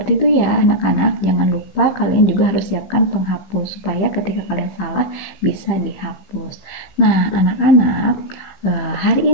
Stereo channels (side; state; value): right; late; 15 ms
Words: itu ya anak-anak. Jangan lupa kalian juga harus siapkan penghapus supaya ketika kalian salah bisa dihapus. Nah, anak-anak,